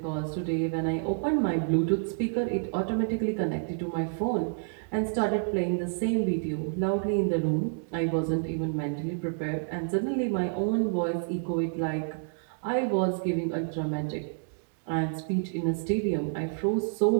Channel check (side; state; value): left; silent; digital silence